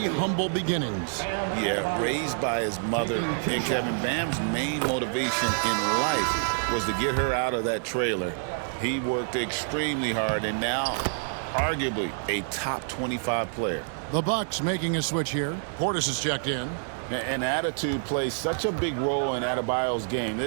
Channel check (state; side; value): silent; left; 60 dB below the other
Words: humble beginnings. Yeah, raised by his mother. And Kevin, Bam's main motivation in life was to get her out of that trailer. He worked extremely hard and now arguably a top 25 player. The Bucks making a switch here. Portis is checked in. And attitude plays such a big role in Adebayo's game.